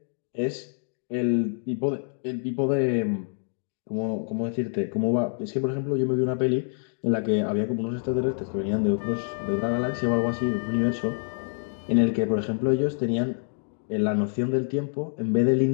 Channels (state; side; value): silent; right; digital silence